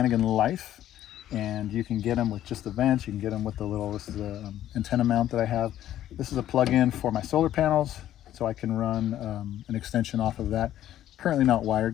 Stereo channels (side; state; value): right; quieter; 12.3 dB